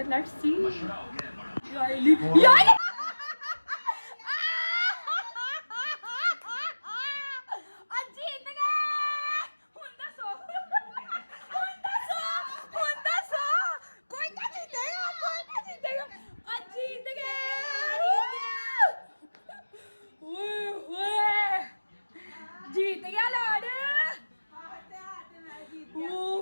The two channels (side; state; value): both; inverted; correlation -1.00